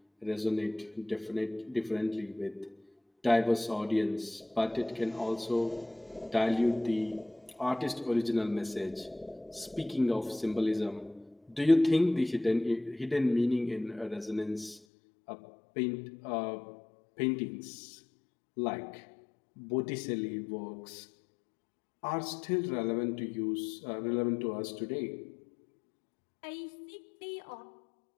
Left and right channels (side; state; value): right; drops out; at 14.8 s